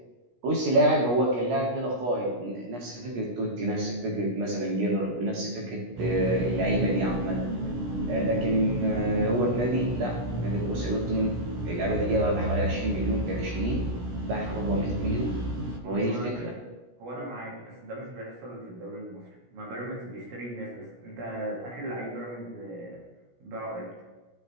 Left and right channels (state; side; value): late; left; 17 ms